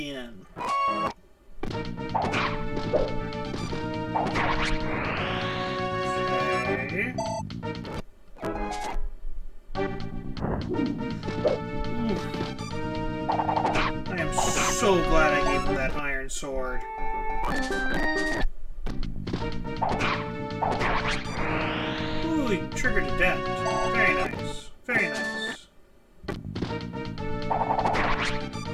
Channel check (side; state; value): both; identical; correlation 1.00